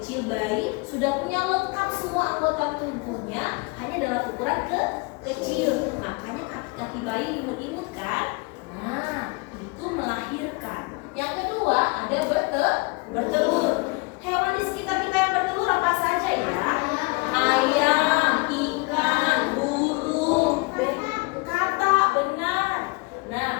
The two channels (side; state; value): right; quieter; 27.7 dB